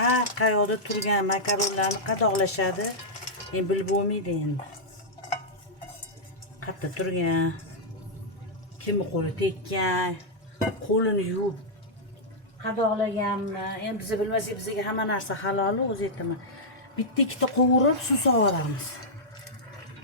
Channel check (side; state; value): both; normal; correlation -0.08